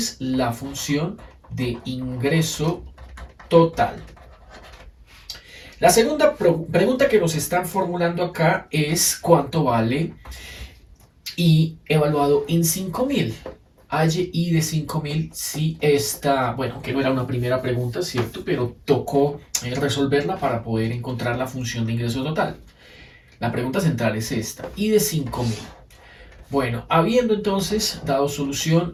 la función de ingreso total. La segunda pregunta que nos están formulando acá es cuánto vale I evaluado en 5000. Halle I de 5000 si esta, bueno, que no era una primera pregunta, ¿cierto? Pero tocó resolverla para poder encontrar la función de ingreso total. La pregunta central es esta, I de 5000. Bueno, habiendo entonces dado solución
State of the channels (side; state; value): both; identical; correlation 1.00